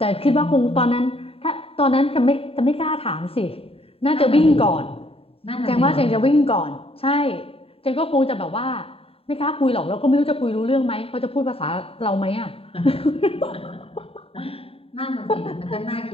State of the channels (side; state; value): right; late; 0.27 ms